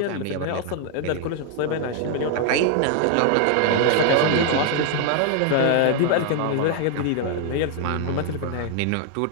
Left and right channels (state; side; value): different; both; correlation 0.00